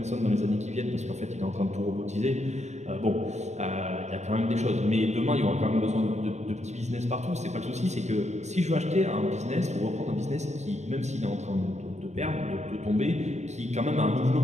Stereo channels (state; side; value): late; left; 0.33 ms